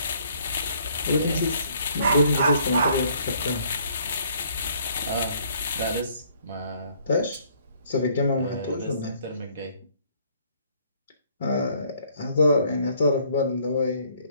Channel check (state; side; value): inverted; both; correlation -0.62